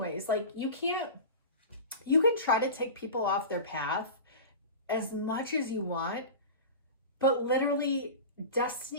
Like you can try to take people off their path as much as you want, but literally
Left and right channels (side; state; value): both; inverted; correlation -0.31